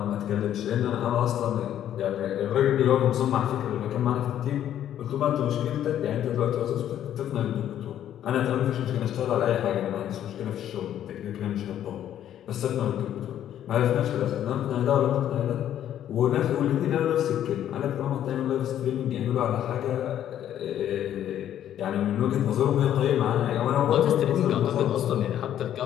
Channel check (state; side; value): quieter; right; 10.9 dB